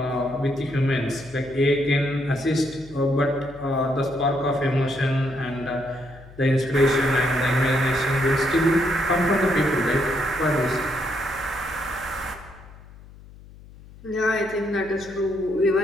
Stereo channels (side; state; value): left; noise; hum, 20 dB below the sound